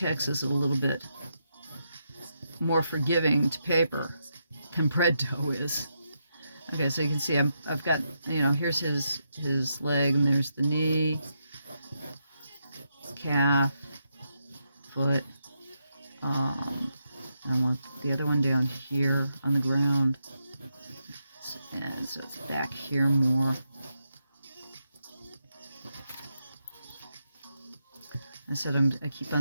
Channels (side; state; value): both; inverted; correlation -0.83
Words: is a little bit more forgiving to paper than bread dough is. Okay, so you can see I've got, you know, here's his leg, and there's the knee, calf, foot. I want the other one down here on the ground, and so it's back here more. I said I keep